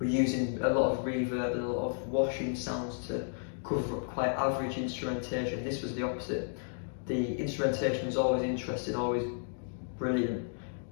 using a lot of reverb and a lot of washing sounds to cover up quite average instrumentation. This was the opposite. The instrumentation was always interesting, always brilliant,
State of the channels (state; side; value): silent; right; digital silence